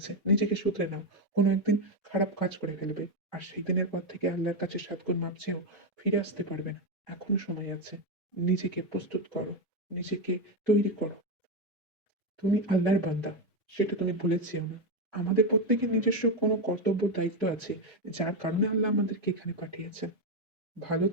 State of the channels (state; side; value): normal; both; correlation 0.08